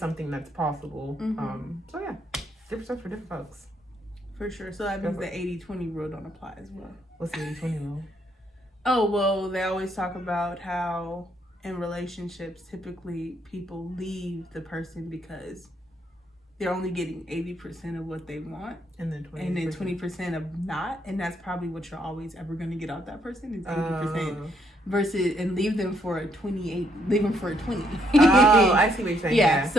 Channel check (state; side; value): normal; both; correlation 0.72